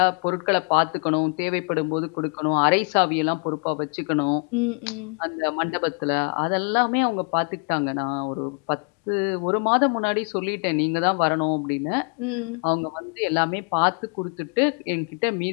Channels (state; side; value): quieter; right; 40.0 dB